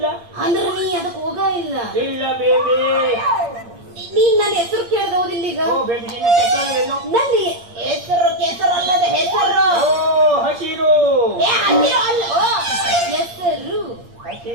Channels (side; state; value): left; late; 8.6 ms